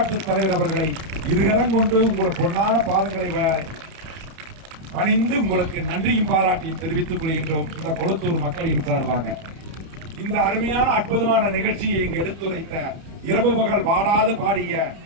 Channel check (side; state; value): left; late; 30 ms